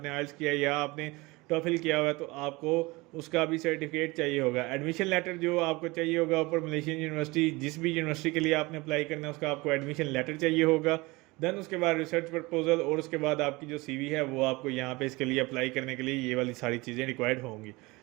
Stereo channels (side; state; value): left; quieter; 23.2 dB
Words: आइल्स किया या आपने टॉफिल किया हुआ है तो आपको उसका भी सर्टिफिकेट चाहिए होगा। एडमिशन लेटर जो आपको चाहिए होगा ऊपर मलेशियन यूनिवर्सिटी, जिस भी यूनिवर्सिटी के लिए आपने अप्लाई करना है उसका आपको एडमिशन लेटर चाहिए होगा। देन उसके बाद रिसर्च प्रपोजल और उसके बाद आपकी जो सीवी है वो आपको यहाँ पे इसके लिए अप्लाई करने के लिए ये वाली सारी चीज़ें रिक्वायर्ड होंगी।